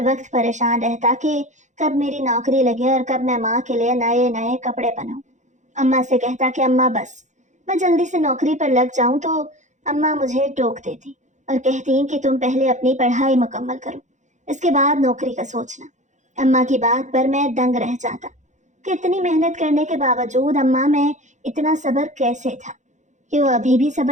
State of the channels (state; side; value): late; left; 0.35 ms